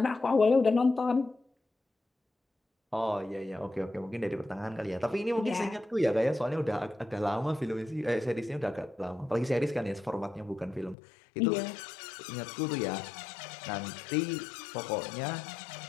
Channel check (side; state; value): right; drops out; at 11.0 s